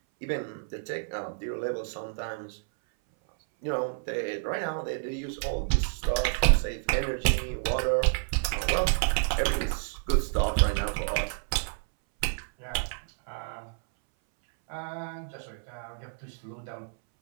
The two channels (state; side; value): silent; left; 58 dB below the other